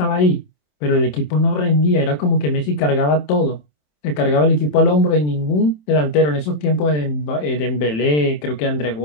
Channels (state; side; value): late; right; 27 ms